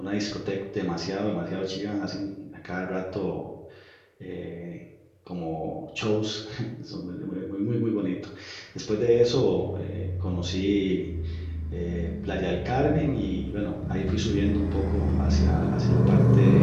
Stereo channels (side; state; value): both; identical; correlation 1.00